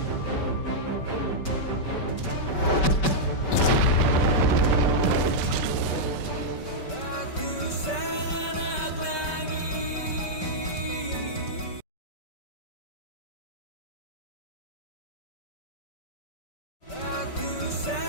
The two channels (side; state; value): right; late; 5.2 ms